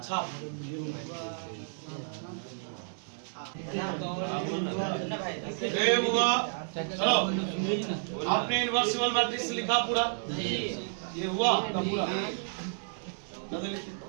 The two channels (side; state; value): left; silent; digital silence